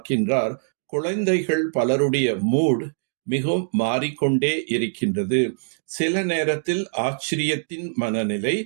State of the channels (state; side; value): silent; left; digital silence